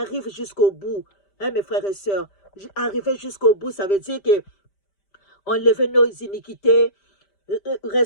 jusqu'au bout. Hein, mes frères et sœurs, arriver jusqu'au bout, ça veut dire que enlever nos iniquités,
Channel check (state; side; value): late; right; 5.1 ms